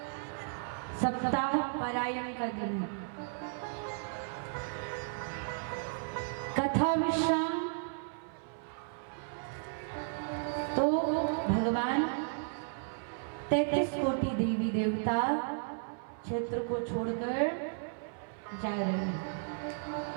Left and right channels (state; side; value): silent; left; 55 dB below the other